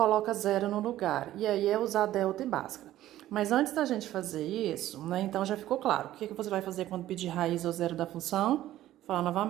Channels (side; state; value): left; quieter; 13.9 dB